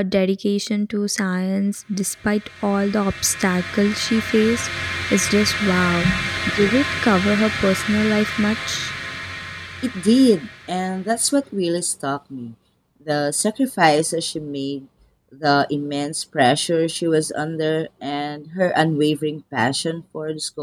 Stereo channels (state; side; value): identical; both; correlation 1.00